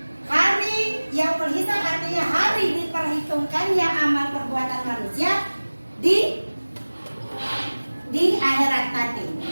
Hari yaumul hisab artinya hari diperhitungkannya amal perbuatan manusia di akhirat nanti.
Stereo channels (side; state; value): both; inverted; correlation -1.00